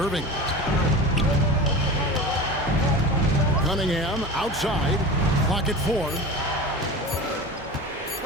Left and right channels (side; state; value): both; normal; correlation 0.32